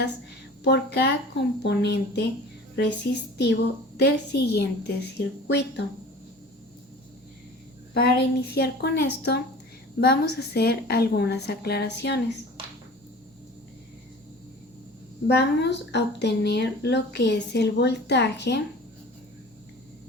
por cada componente resistivo del siguiente circuito. Para iniciar con esto, vamos a hacer algunas aclaraciones. Vamos a obtener lo que es el voltaje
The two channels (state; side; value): normal; both; correlation 0.41